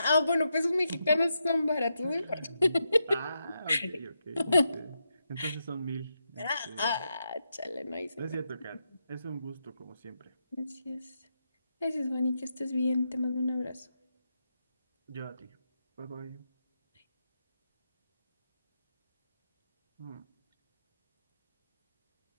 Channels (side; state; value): both; inverted; correlation -0.84